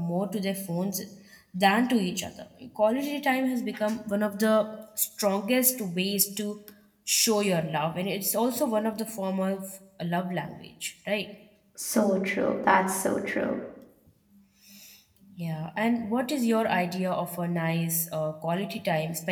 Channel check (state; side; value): identical; both; correlation 1.00